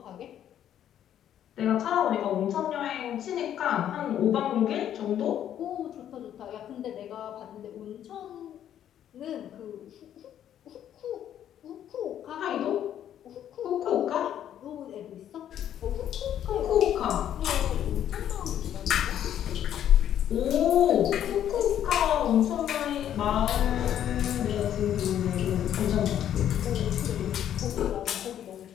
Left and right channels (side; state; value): right; quieter; 10.5 dB